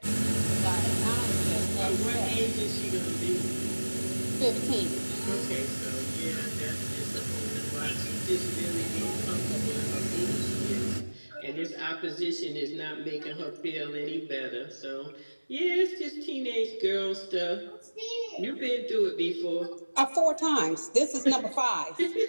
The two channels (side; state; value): both; inverted; correlation -1.00